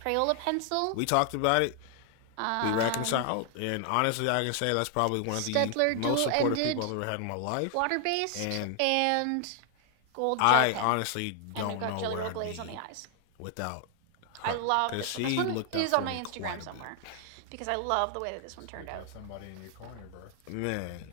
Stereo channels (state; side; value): different; both; correlation 0.00